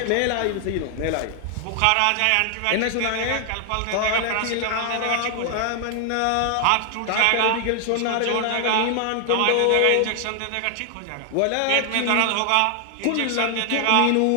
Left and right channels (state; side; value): different; both; correlation 0.00